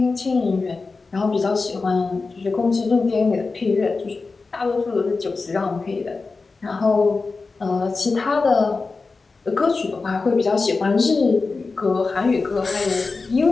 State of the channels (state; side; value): quieter; right; 4.1 dB